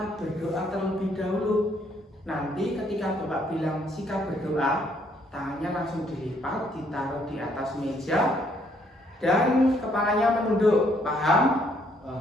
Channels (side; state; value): both; normal; correlation 0.68